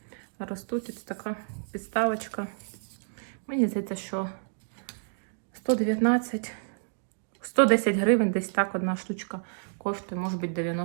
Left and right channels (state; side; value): silent; left; digital silence